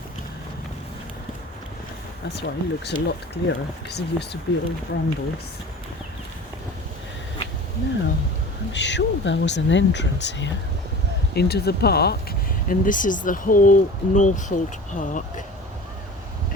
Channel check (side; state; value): both; normal; correlation 0.38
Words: That's why it looks a lot clearer, because it used to be all brambles. Now, I'm sure there was an entrance here into the park, and this is the whole Northolt Park